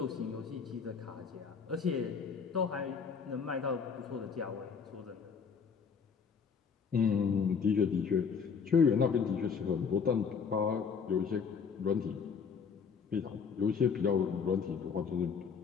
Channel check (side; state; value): right; quieter; 6.1 dB